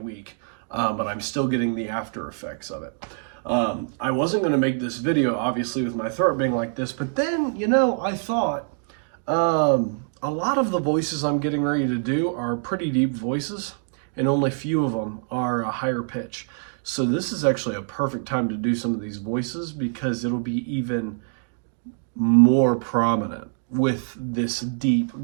But I'm still getting the after effects of it. I wasn't going to make this video, obviously, with my throat being like this, but then, I thought a lot of the voices I'm getting ready to do are pretty deep voices, and only few of them are a higher pitch. So this is actually a perfect time to do some of these voices because it'll be even more prominent with this deep,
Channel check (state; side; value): silent; left; digital silence